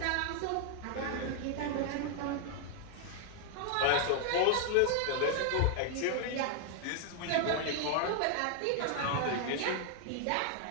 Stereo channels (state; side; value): different; both; correlation 0.00